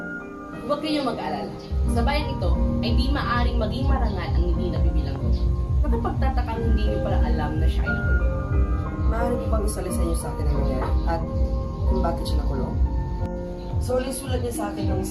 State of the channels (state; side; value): identical; both; correlation 1.00